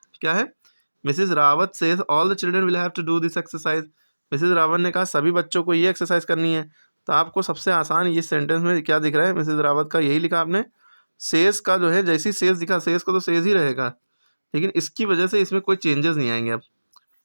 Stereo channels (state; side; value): inverted; both; correlation -1.00